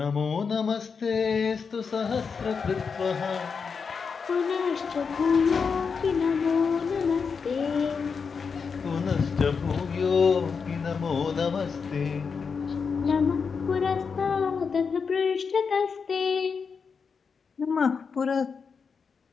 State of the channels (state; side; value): quieter; right; 5.6 dB